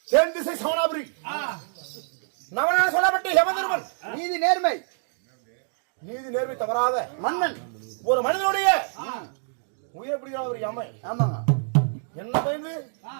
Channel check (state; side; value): silent; left; digital silence